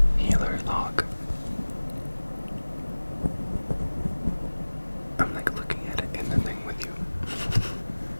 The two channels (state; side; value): inverted; both; correlation -1.00